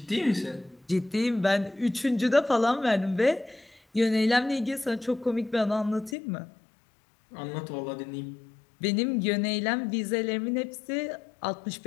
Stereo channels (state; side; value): drops out; right; at 6.2 s